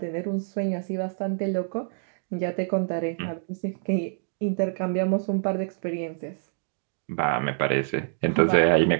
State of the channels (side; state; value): left; silent; digital silence